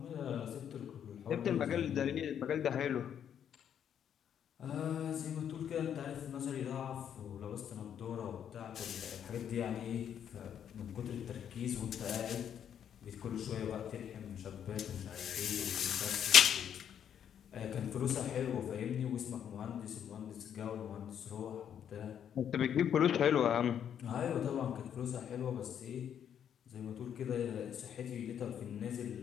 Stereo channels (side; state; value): right; quieter; 9.0 dB